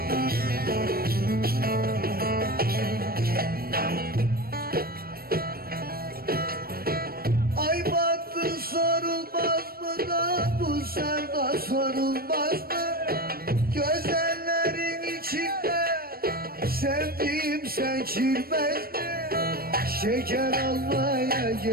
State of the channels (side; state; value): left; late; 0.44 ms